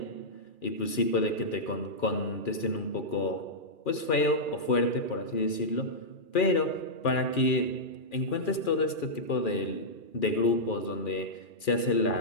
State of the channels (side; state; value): right; late; 2.4 ms